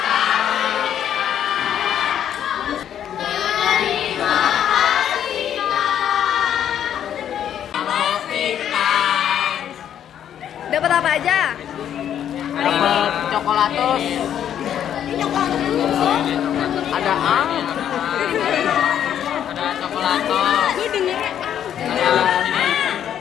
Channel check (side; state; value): right; quieter; 9.8 dB